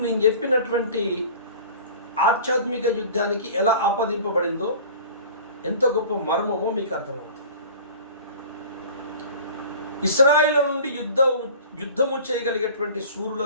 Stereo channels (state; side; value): inverted; both; correlation -0.42